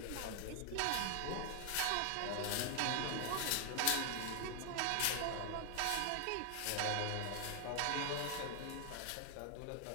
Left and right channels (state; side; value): different; both; correlation 0.00